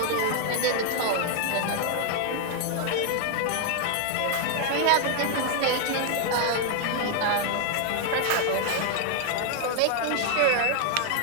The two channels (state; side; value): different; both; correlation -0.01